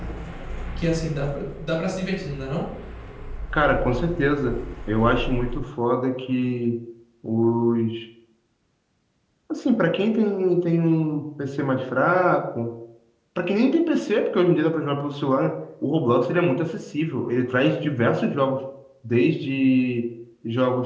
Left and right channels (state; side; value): identical; both; correlation 1.00